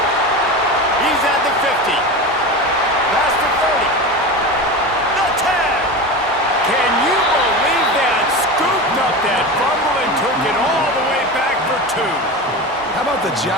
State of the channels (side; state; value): both; normal; correlation 0.26